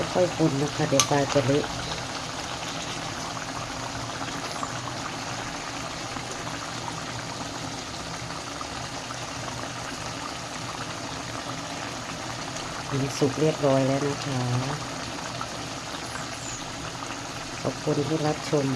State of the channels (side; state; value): both; identical; correlation 1.00